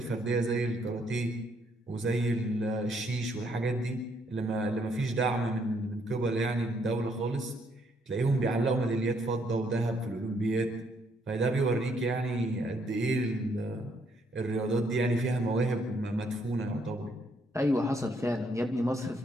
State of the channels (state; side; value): normal; both; correlation 0.71